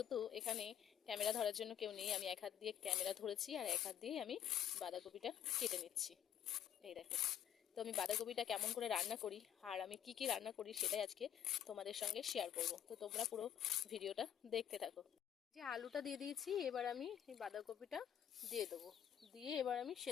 এখানে ক্যামেরা ধরার জন্য কেউ নেই, আমি এক হাত দিয়ে ক্যামেরা ধরেছি আর এক হাত দিয়ে আমি বাঁধাকপিটা কেটে নিচ্ছি। এই দেখো, তো আমি বাঁধাকপিটা কেমন করে রান্না করি আর আমি কি কি রান্না করি সেটাই আজকে তোমাদের সঙ্গে শেয়ার করব। তো তোমরা পুরো ভিডিওটা দেখতে থাকো। যে আলুটা দিয়ে দিয়েছি, এবার আমি এই বাঁধাকপিটা দিয়ে দেবো, দিয়ে এবার আমি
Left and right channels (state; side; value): quieter; right; 9.8 dB